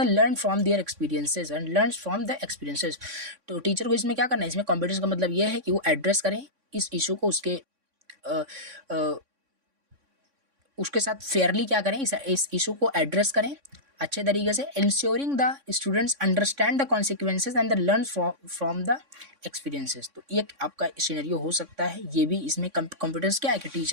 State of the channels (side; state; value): left; late; 3.6 ms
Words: learn from their experiences. तो टीचर को इसमें क्या करना है, इसमें कॉम्पिटेंस का मतलब ये है कि वो एड्रेस करें इस इशू को, उसके साथ फेयरली क्या करें, इस इशू को एड्रेस करें अच्छे तरीके से। Ensuring the students understand the consequences and the learn from the experiences. तो ये आपका सिनेरियो हो सकता है। ये भी इसमें कॉम्पिटेंस क्या है कि